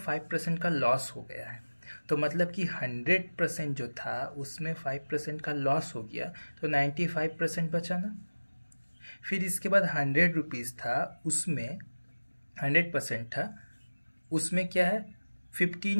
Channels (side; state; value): both; inverted; correlation -1.00